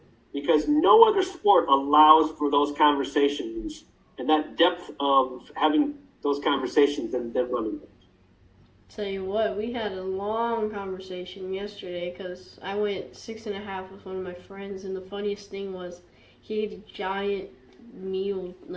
because no other sport allows for those conversations and that depth of having those conversations than running. Tell you what, we had a long conversation yesterday because I went 6.5 with one of my friends, and the funniest thing was he ate a giant meal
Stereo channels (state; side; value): identical; both; correlation 1.00